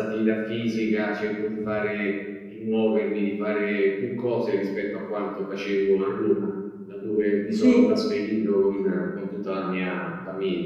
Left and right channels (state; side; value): identical; both; correlation 1.00